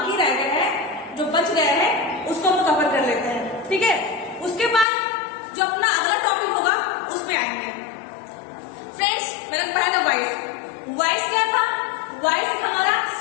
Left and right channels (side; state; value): right; drops out; at 4.9 s